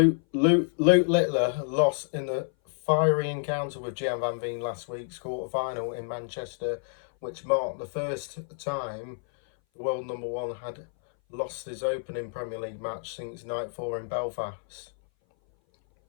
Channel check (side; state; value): right; silent; 57 dB below the other